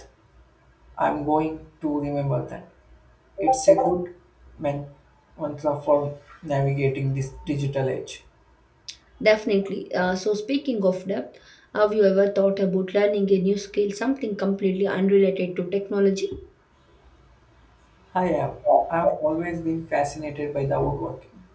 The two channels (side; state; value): both; identical; correlation 1.00